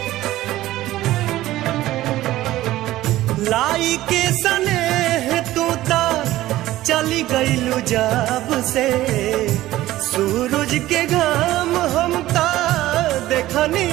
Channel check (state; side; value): quieter; left; 15.6 dB